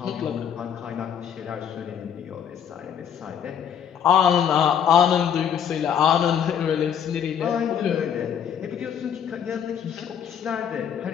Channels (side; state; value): right; quieter; 8.4 dB